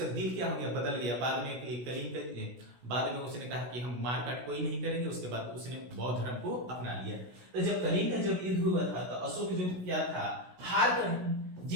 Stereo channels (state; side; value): late; left; 16 ms